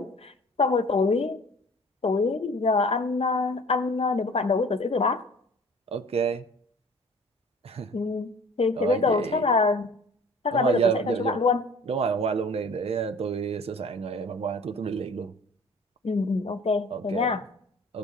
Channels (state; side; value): normal; both; correlation 0.47